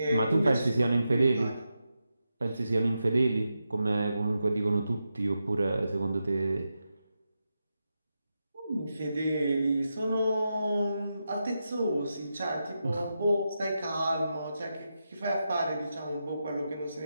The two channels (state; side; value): inverted; both; correlation -0.88